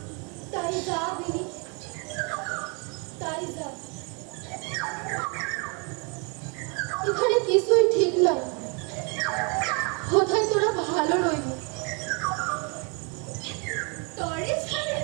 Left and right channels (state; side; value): quieter; left; 34.4 dB